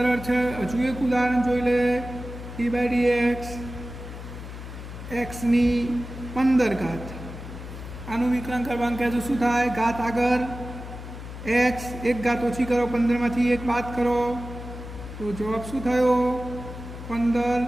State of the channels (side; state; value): left; noise; hum, 11 dB below the sound